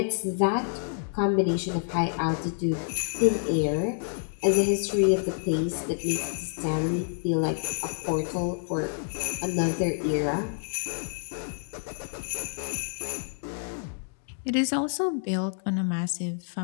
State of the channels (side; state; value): right; silent; 57 dB below the other